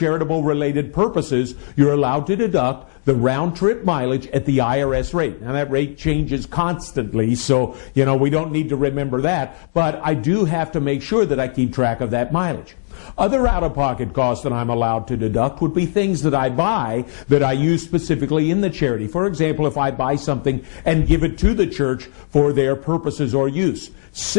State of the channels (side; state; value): right; silent; digital silence